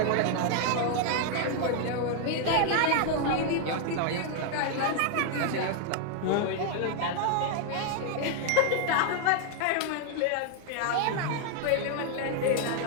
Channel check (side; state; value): both; different; correlation 0.00